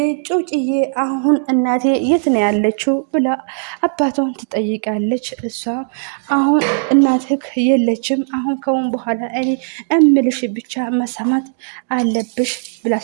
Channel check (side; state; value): left; silent; digital silence